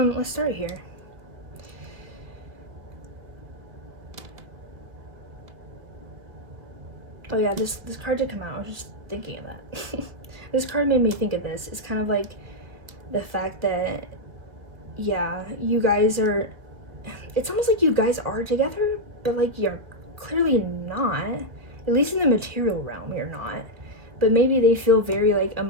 Let's start here. Oh yeah, this card did come out. I was just thinking of that. This card made me think of this. It's kind of like the fact that, yeah, you guys are, it's almost like you guys are together, but like you're clearly not. At least in the material realm, you're not. But maybe they feel very like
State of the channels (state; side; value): late; left; 1.7 ms